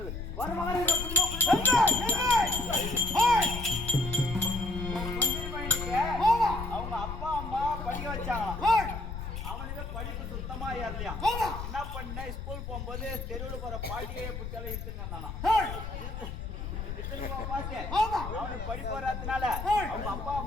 வர மகனே, அவங்க அப்பா அம்மா படிக்க வச்சாங்க. அவனுக்கு படிப்பு சுத்தமா ஏறலையா? என்ன பண்ண, ஸ்கூல் போகும்போது தெருவில் போற பாட்டியே பிடிச்சாலும் இட்டுனானா? அவனுக்கு படிப்பு வராதனால அவங்க அப்பா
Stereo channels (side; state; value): left; noise; rumble, 6 dB below the sound